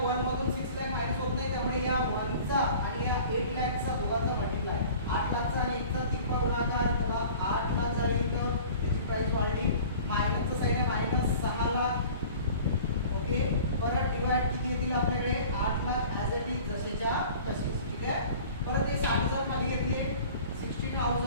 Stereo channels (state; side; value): inverted; both; correlation -0.44